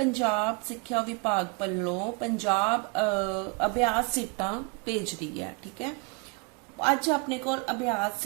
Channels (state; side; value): quieter; left; 31.8 dB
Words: ਸਿੱਖਿਆ ਵਿਭਾਗ ਵੱਲੋਂ ਪੰਜਾਬ ਅਭਿਆਸ ਸੀਟਾਂ ਭੇਜ ਰਹੀ ਹੈ। ਠੀਕ ਹੈ, ਅੱਜ ਆਪਣੇ ਕੋਲ ਅਭਿਆਸ